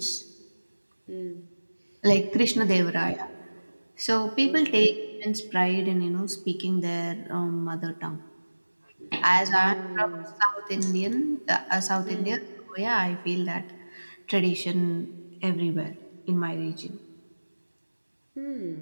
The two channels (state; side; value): inverted; both; correlation -1.00